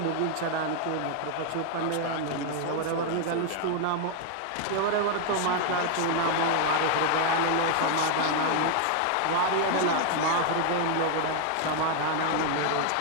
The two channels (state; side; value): different; both; correlation 0.00